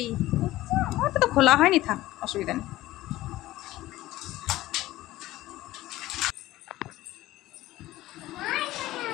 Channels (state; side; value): quieter; right; 16.4 dB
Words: ওটা তো খোলা হয়নি, থাক, অসুবিধা নেই।